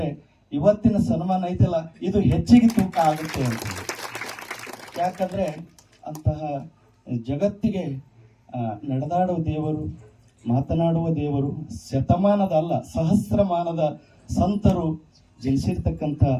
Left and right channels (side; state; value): both; identical; correlation 1.00